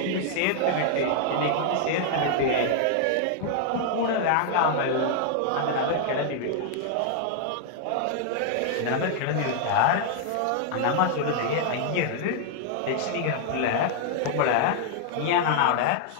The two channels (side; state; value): both; different; correlation -0.01